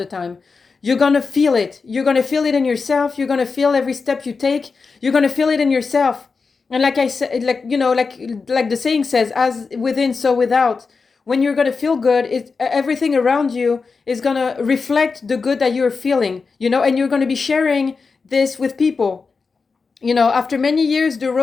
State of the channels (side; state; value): right; quieter; 4.7 dB